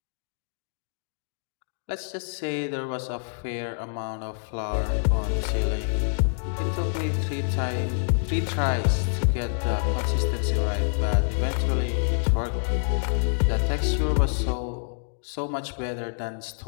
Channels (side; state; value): right; silent; digital silence